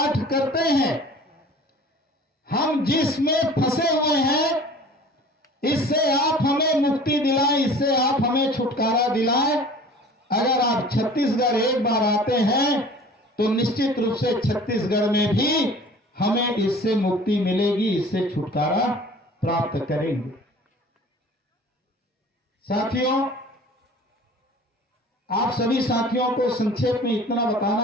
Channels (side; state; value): both; normal; correlation 0.45